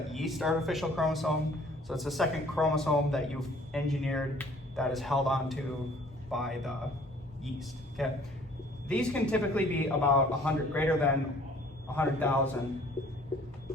yeast artificial chromosome. So it's a second chromosome that you've engineered that is held onto by the yeast. Okay. These can typically be about 100, greater than 100,000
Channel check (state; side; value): normal; both; correlation 0.55